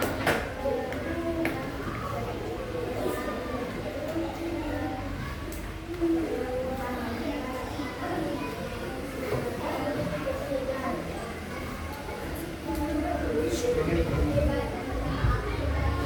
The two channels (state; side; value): identical; both; correlation 1.00